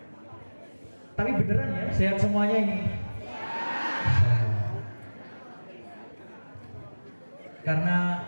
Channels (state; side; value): inverted; both; correlation -1.00